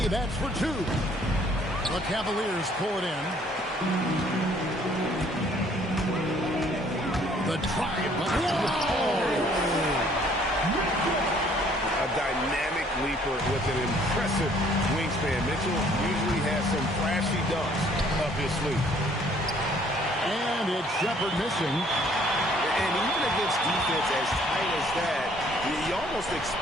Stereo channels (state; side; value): normal; both; correlation 0.60